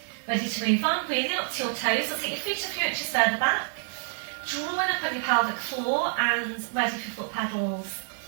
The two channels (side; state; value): left; silent; digital silence